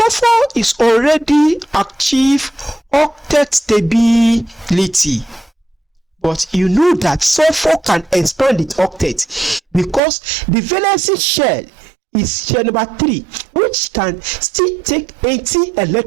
is already achieved octet stability. But you know that sulfur can expand its octet because the valency shell is shell number 3, which can still take 80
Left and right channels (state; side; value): drops out; left; at 10.0 s